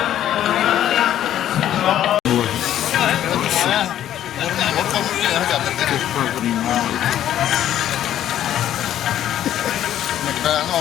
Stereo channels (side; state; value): right; quieter; 11.5 dB